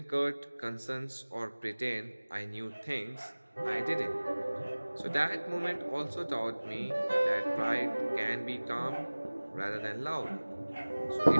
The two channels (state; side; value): inverted; both; correlation -1.00